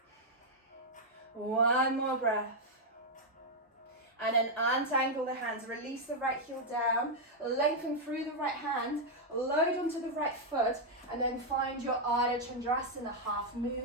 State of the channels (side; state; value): both; normal; correlation -0.02